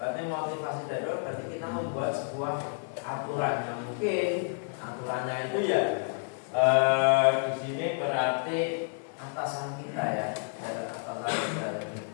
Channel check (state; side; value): silent; right; 58 dB below the other